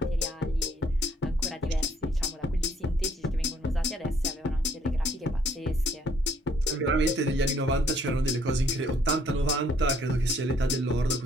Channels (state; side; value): normal; both; correlation 0.64